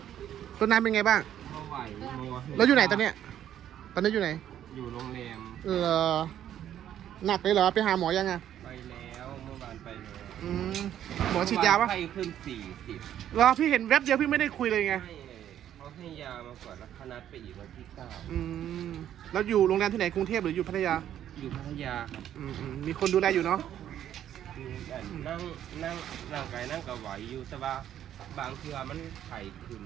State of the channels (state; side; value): quieter; left; 10.8 dB